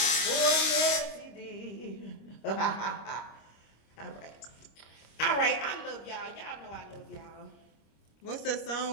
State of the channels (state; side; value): late; right; 26 ms